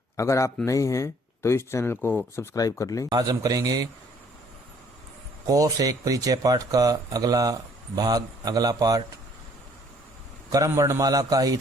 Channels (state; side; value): normal; both; correlation 0.60